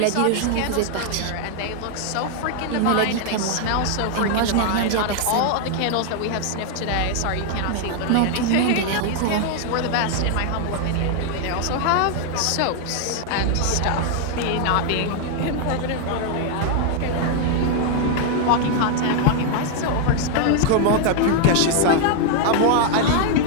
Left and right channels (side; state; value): both; different; correlation 0.00